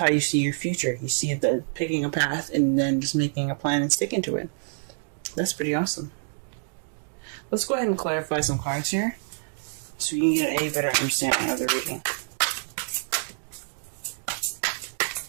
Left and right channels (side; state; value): left; silent; digital silence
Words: you see your future. You see the picking a path and then just making a plan and sticking to it. That's pretty awesome. Let's go ahead and clarify some cards here, so you can get a better understanding of the reading.